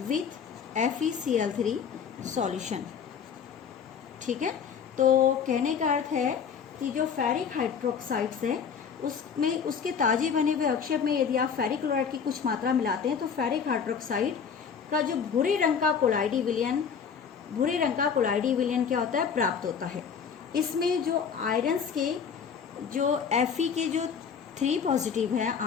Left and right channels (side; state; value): right; quieter; 6.8 dB